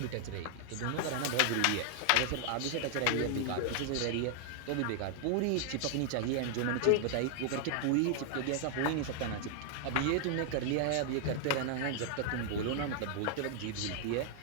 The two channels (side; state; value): both; different; correlation 0.00